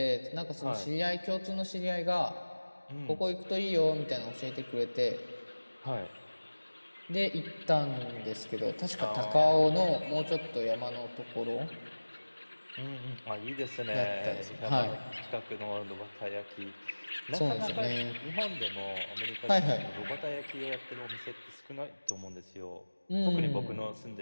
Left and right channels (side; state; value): both; inverted; correlation -1.00